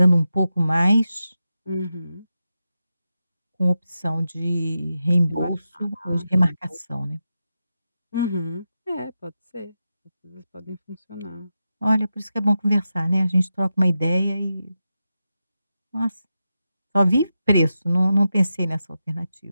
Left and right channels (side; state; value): both; inverted; correlation -0.90